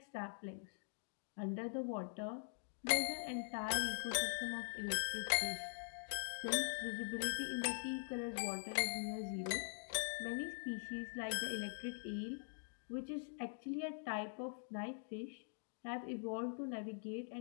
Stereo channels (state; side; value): silent; right; digital silence